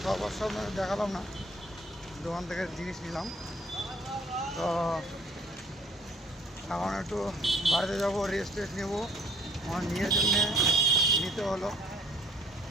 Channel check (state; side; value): normal; both; correlation 0.60